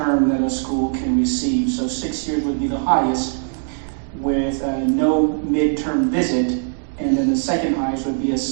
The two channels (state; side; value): silent; left; digital silence